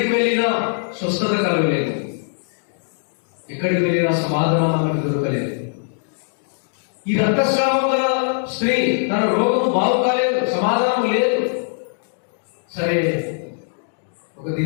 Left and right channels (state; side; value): silent; right; digital silence